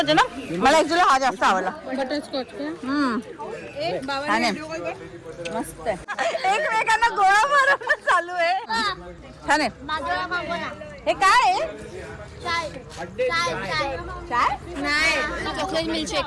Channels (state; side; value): identical; both; correlation 1.00